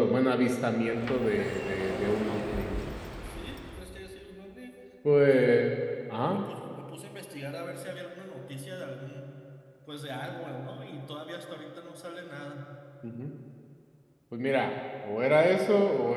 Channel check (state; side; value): identical; both; correlation 1.00